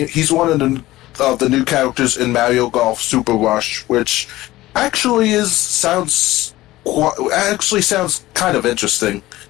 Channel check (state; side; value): quieter; right; 17.1 dB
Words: He's one of the new characters in Mario Golf Super Rush, which actually sounds kind of interesting